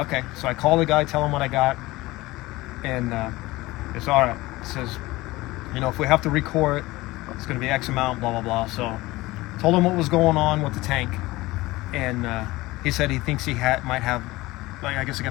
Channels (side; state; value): right; quieter; 19.7 dB